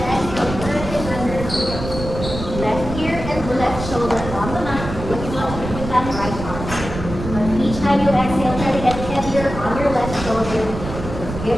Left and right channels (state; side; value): noise; right; rumble, 8 dB below the sound